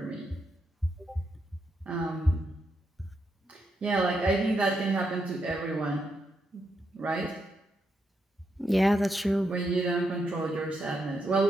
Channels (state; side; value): normal; both; correlation 0.82